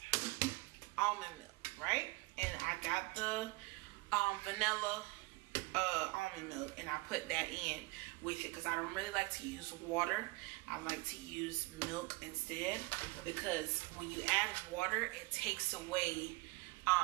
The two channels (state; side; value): quieter; left; 24.0 dB